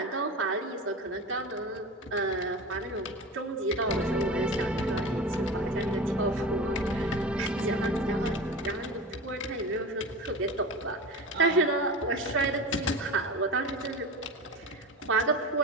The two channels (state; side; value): normal; both; correlation 0.29